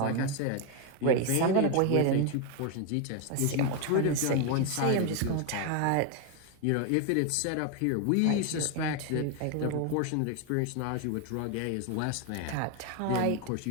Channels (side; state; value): both; different; correlation 0.01